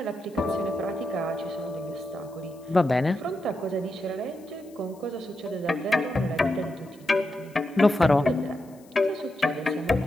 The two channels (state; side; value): noise; left; hiss, 28 dB below the sound